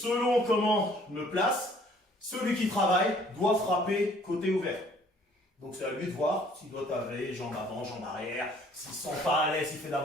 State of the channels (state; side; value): normal; both; correlation 0.58